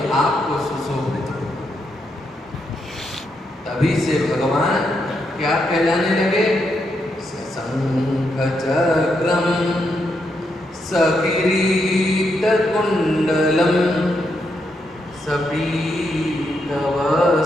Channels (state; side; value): normal; both; correlation 0.81